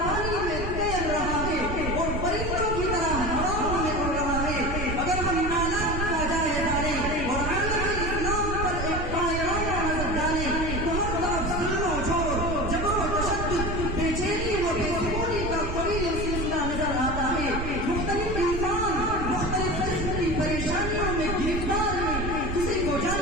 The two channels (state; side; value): noise; right; rumble, 3 dB below the sound